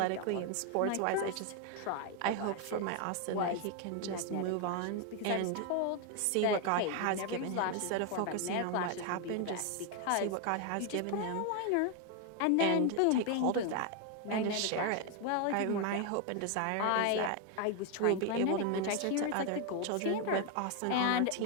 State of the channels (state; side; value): different; both; correlation 0.01